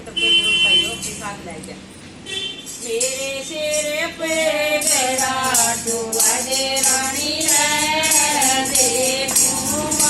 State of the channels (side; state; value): both; identical; correlation 1.00